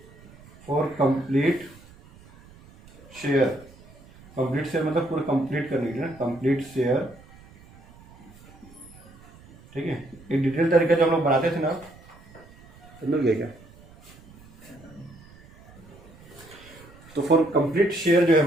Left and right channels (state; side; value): noise; right; rumble, 24 dB below the sound